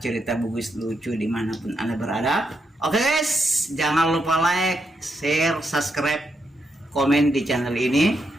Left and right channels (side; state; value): both; normal; correlation 0.81